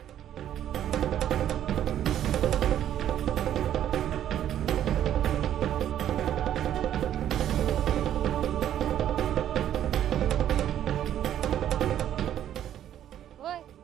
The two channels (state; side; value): quieter; left; 11.0 dB